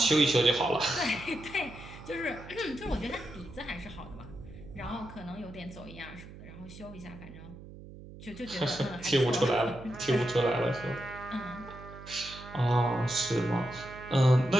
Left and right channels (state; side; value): noise; right; hum, 16 dB below the sound